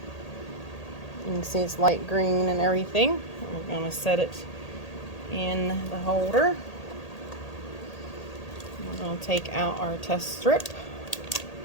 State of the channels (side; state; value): right; late; 1.8 ms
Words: it's light green and everything. We're going to set it in the holder. We're going to take out our test strip.